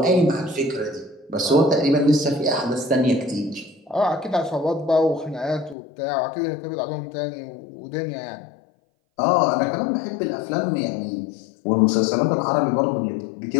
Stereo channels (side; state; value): right; drops out; at 5.8 s